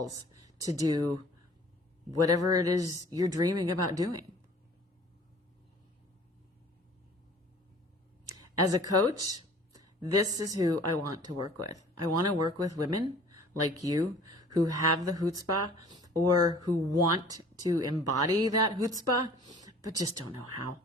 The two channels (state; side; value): normal; both; correlation 0.49